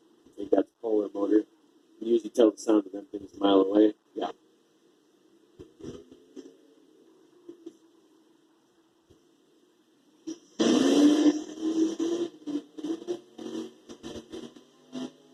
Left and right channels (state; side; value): identical; both; correlation 1.00